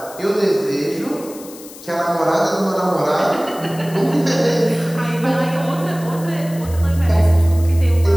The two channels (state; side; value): noise; left; hiss, 18 dB below the sound